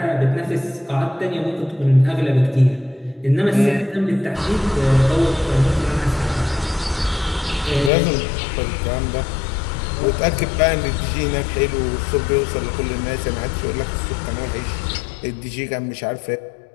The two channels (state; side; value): drops out; right; at 7.9 s